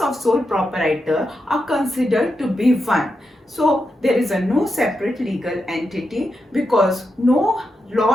of sole proprietor are considered to be one. So there is a no separate legal entity because no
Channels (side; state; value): both; normal; correlation 0.86